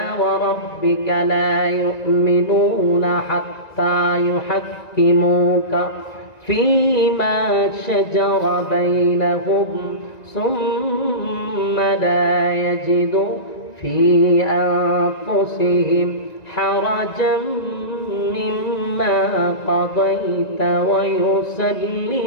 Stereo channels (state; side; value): late; right; 1.9 ms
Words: ওয়া রাব্বিকা লা ইউমিনুনা হাত্তা ইউহাক্কিমুকা ফীমা শাজারা বাইনাহুম সুম্মা লা ইয়াজিদু ফী আনফুসিহিম হারাজাম মিম্মা কাদাইতা ওয়া